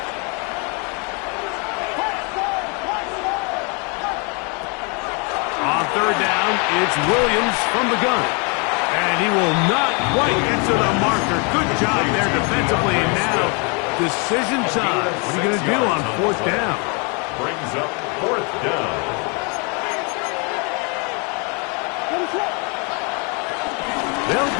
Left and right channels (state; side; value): quieter; right; 33.8 dB